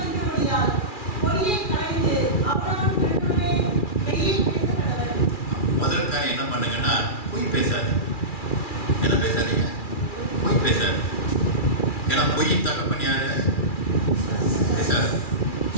முதல் காரியம் என்ன பண்ணுங்கன்னா, பொய் பேசாது. என்ன பேசாதீங்க, பொய் பேசாது. ஏன்னா பொய்யின் தகப்பன் யாரு, பேசாது.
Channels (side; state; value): right; late; 2.4 ms